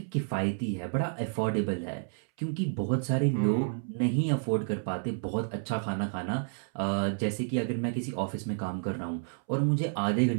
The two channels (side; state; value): left; silent; 58 dB below the other